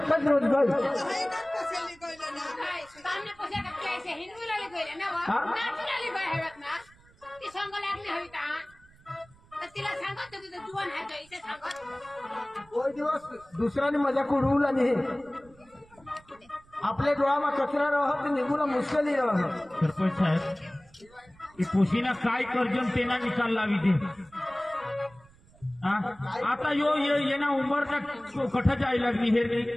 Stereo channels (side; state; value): right; noise; rumble, 27 dB below the sound